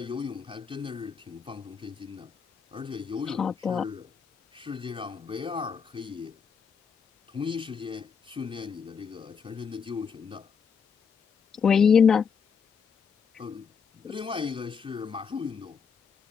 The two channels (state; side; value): quieter; right; 6.3 dB